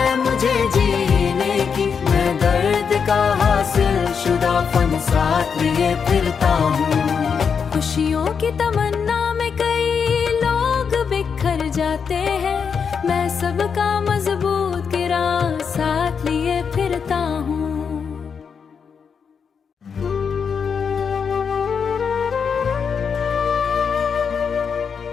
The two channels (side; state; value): right; quieter; 6.4 dB